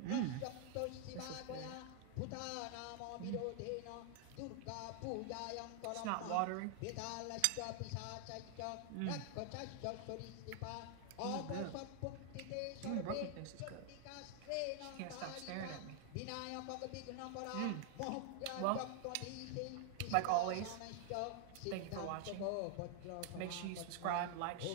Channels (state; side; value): different; both; correlation 0.00